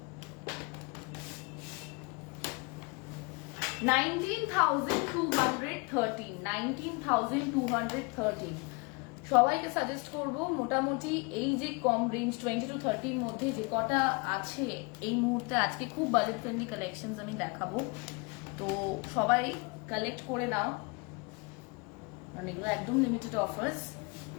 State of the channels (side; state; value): right; quieter; 29.7 dB